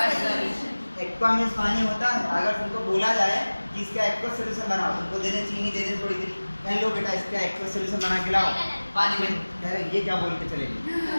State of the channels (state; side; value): inverted; both; correlation -1.00